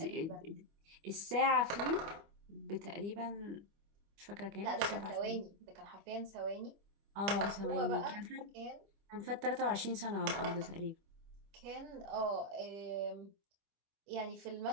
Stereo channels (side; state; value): left; late; 25 ms